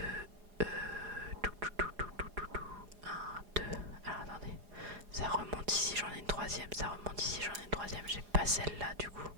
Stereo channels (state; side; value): late; left; 4.9 ms